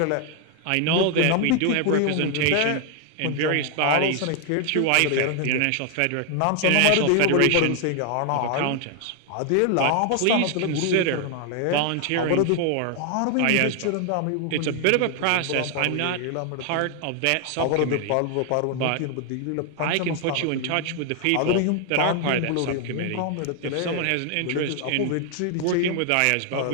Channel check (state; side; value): different; both; correlation 0.00